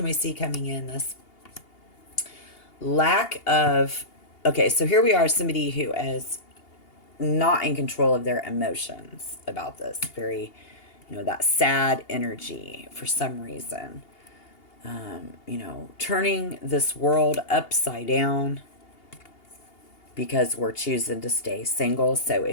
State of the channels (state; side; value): late; right; 2.8 ms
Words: we see coming in? This lack of, okay, so here we are, somebody who is not in control of their emotions about this. Very, you know, that sad energy for some reason. You know, turning this world upside down because we're choosing to stay single. So